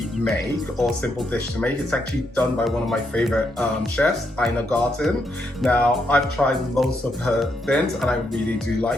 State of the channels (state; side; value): normal; both; correlation 0.79